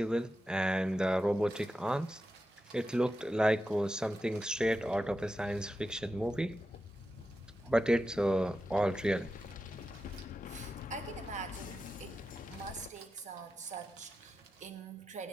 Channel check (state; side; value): normal; both; correlation 0.91